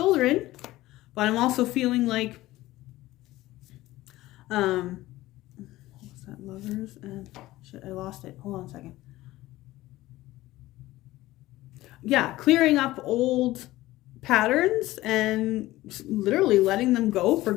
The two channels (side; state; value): right; quieter; 17.1 dB